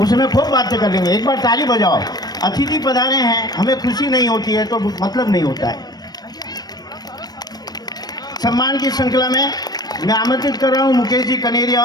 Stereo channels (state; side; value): late; right; 0.19 ms